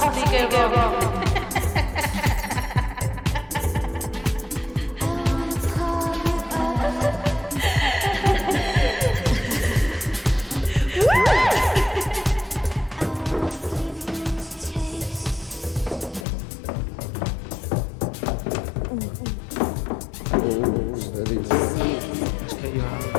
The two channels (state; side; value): drops out; right; at 16.2 s